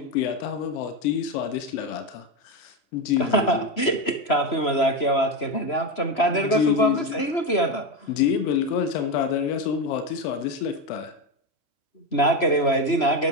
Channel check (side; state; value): right; late; 3.0 ms